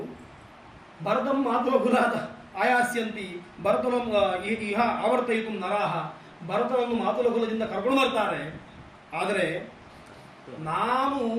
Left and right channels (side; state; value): both; identical; correlation 1.00